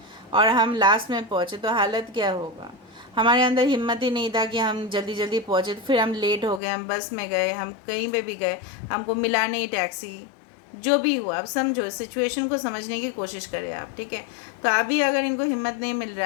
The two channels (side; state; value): right; drops out; at 6.6 s